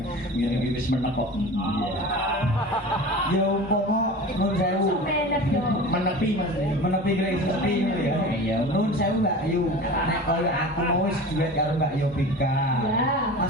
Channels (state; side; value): normal; both; correlation 0.35